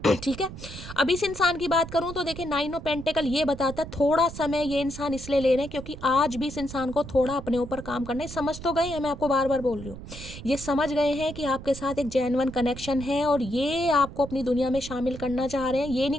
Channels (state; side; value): noise; right; rumble, 12 dB below the sound